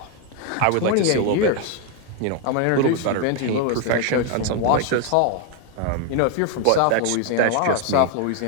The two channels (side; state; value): both; different; correlation 0.01